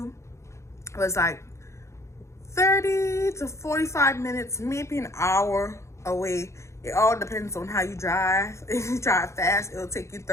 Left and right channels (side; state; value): right; late; 0.14 ms